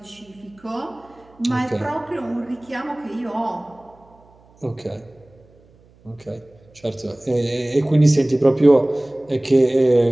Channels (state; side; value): noise; right; hum, 29 dB below the sound